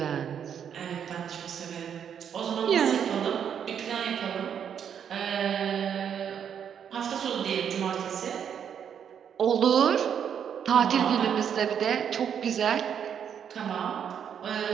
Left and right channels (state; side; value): quieter; left; 8.2 dB